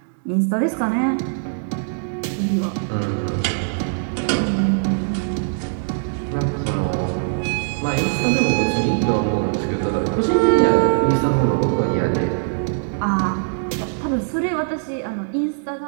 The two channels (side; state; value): left; silent; digital silence